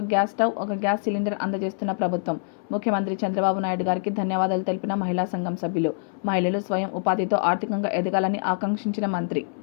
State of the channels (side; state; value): right; silent; 62 dB below the other